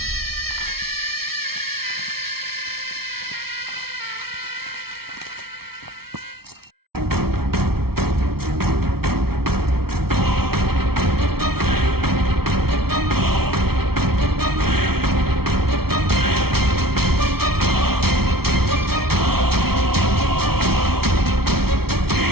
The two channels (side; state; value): left; late; 0.95 ms